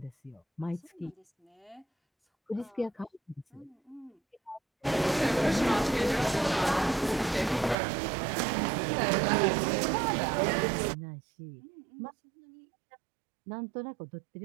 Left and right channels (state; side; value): drops out; left; at 7.8 s